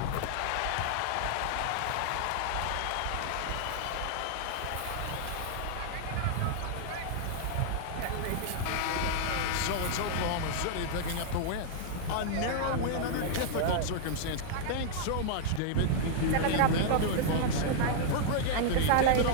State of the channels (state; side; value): different; both; correlation -0.01